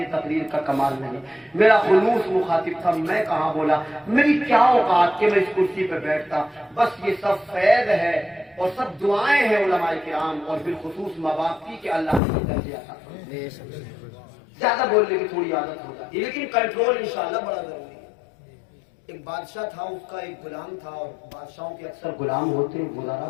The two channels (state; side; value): drops out; right; at 12.2 s